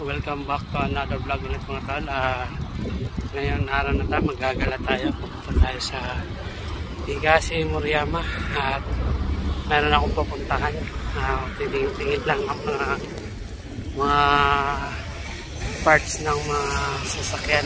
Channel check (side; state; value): both; identical; correlation 1.00